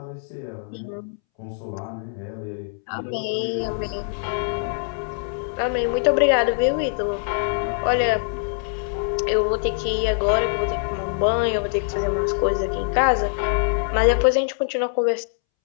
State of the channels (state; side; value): silent; right; 63 dB below the other